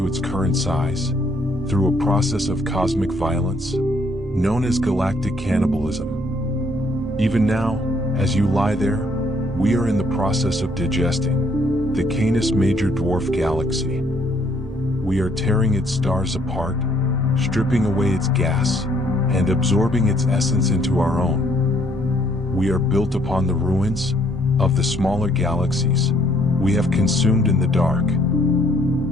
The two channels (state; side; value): normal; both; correlation 0.66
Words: its current size through a process of cosmic violence known as galactic cannibalism. Even now, as you lie there, we are in the process of digesting the Canis Major Dwarf Galaxy. We are tearing its stars apart, stripping away its gas, and absorbing its essence into our own. We are built upon the ruins of the smaller galaxies we have consumed in the dark.